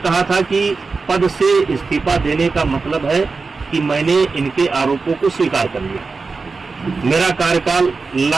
कहा था कि पद से इस्तीफा देने का मतलब है कि मैंने इनके आरोपों को स्वीकार कर लिया। मेरा कार्यकाल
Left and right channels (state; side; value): quieter; left; 4.3 dB